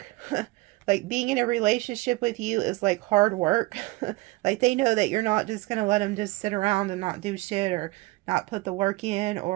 Like, being in a relationship with you is like hard work. Like, they know that you're not just going to let them just sit around and not do shit or not put the work in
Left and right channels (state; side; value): quieter; left; 21.2 dB